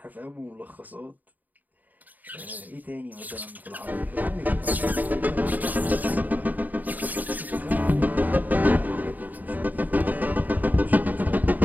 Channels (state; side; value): late; left; 0.083 ms